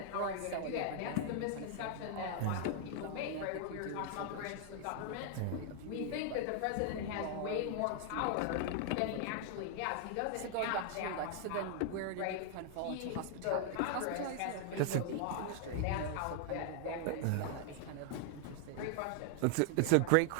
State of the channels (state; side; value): different; both; correlation 0.00